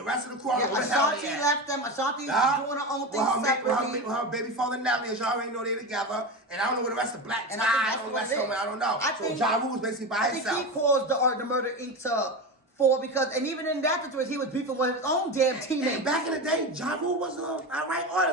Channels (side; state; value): both; normal; correlation 0.22